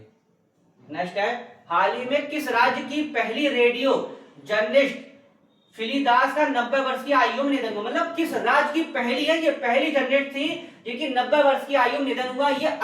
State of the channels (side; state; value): both; identical; correlation 1.00